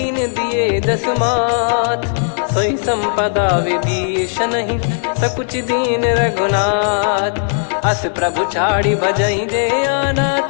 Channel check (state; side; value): silent; right; digital silence